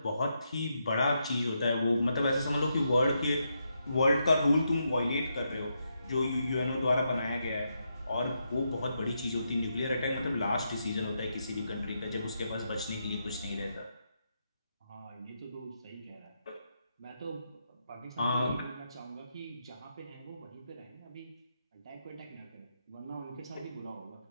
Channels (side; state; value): both; inverted; correlation -0.82